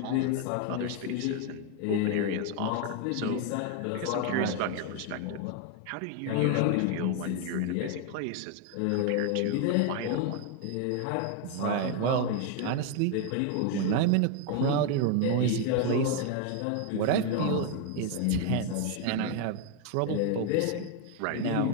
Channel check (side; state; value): both; different; correlation 0.01